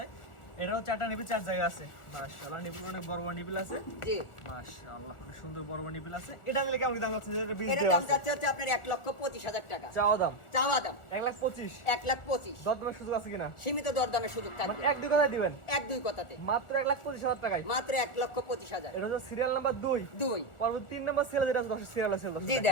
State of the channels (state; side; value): late; right; 1.4 ms